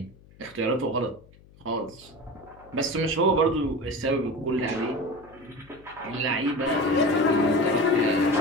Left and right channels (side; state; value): left; noise; hum, 25 dB below the sound